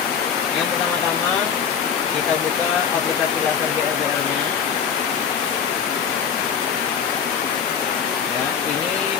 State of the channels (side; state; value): right; quieter; 7.3 dB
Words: yang pertama-tama kita buka aplikasi laser GRBL-nya. Ya, ini